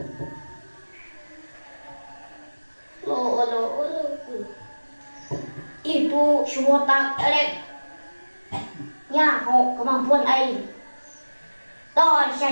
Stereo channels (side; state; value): both; inverted; correlation -1.00